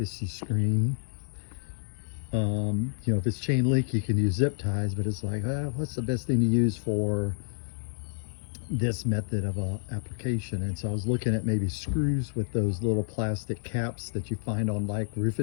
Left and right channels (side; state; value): right; silent; 59 dB below the other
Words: screen, if it's chain link, you can use zip ties, but it's like, what's the best thing to use for this method of application? And so I was looking at maybe screws with those little plastic caps that you find on like